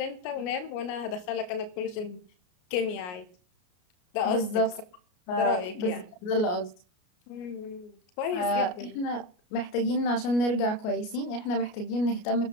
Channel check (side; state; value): right; late; 33 ms